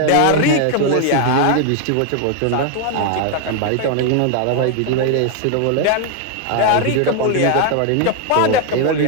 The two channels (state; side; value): different; both; correlation 0.00